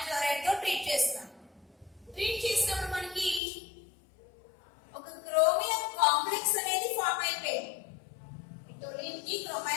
క్లోరైడ్ తో ట్రీట్ చేస్తాం. ట్రీట్ చేసినప్పుడు మనకి క్రోమియం కాంప్లెక్స్ అనేది ఫామ్ అయిపోయింది. టోలిన్ కి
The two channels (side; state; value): right; drops out; at 3.4 s